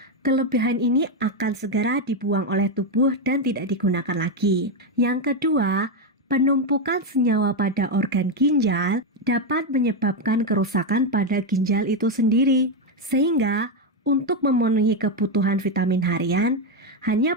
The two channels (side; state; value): both; normal; correlation 0.05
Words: kelebihan ini akan segera dibuang oleh tubuh dan tidak digunakan lagi. Yang kedua, penumpukan senyawa pada organ ginjal dapat menyebabkan kerusakan pada ginjal itu sendiri, sehingga Untuk memenuhi kebutuhan vitamin harian,